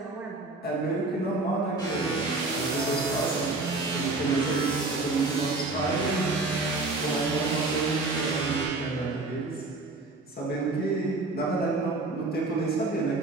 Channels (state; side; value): quieter; left; 3.3 dB